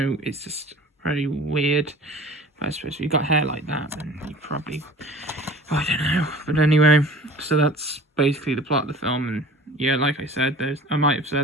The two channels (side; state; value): both; normal; correlation 0.43